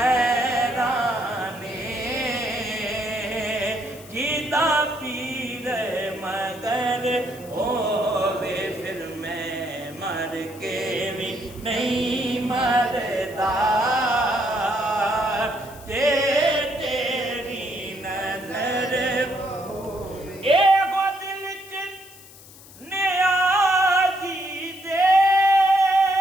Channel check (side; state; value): left; noise; hiss, 20 dB below the sound